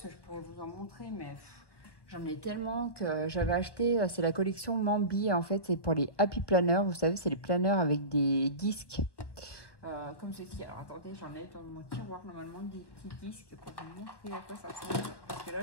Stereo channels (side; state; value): right; late; 1.1 ms